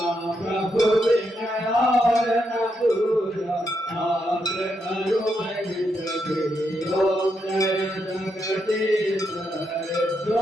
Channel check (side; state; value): both; normal; correlation 0.81